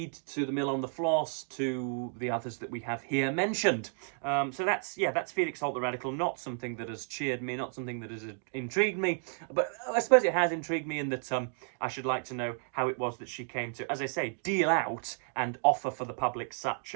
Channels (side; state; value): left; silent; 56 dB below the other